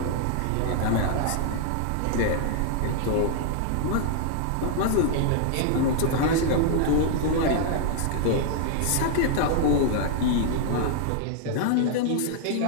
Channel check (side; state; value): both; different; correlation 0.00